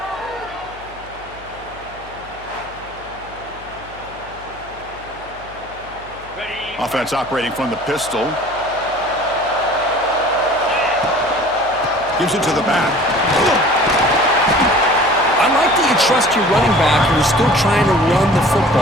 Offense operating from the pistol. Gives it to the back. I like that you trust your running back who's still trying to run the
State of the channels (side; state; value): left; noise; hum, 21 dB below the sound